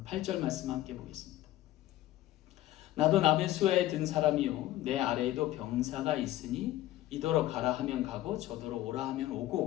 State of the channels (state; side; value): quieter; right; 14.7 dB